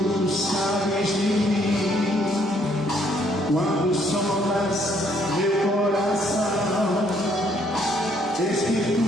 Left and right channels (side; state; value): both; normal; correlation 0.67